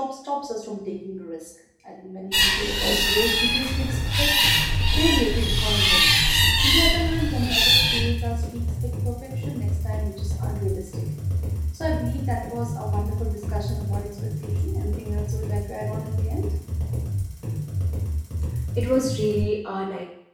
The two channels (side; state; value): both; identical; correlation 1.00